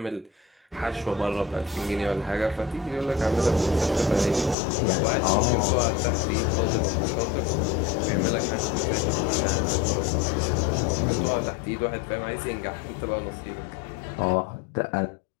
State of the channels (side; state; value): right; drops out; at 4.5 s